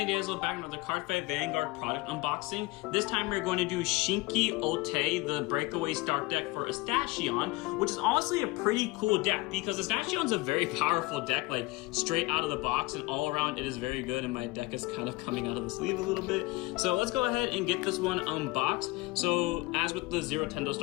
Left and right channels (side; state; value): right; quieter; 22.8 dB